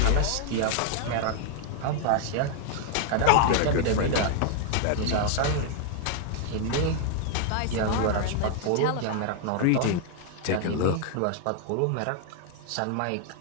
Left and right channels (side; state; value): both; different; correlation 0.00